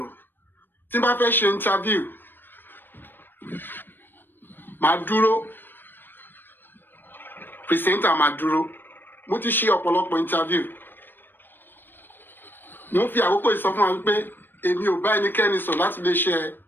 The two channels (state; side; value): late; right; 0.095 ms